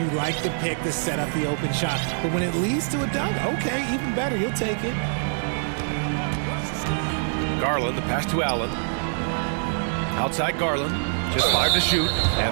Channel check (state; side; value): silent; left; digital silence